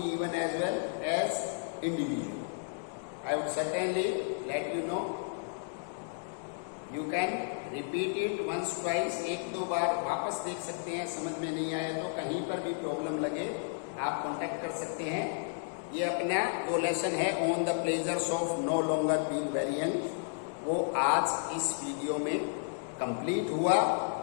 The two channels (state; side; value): silent; right; digital silence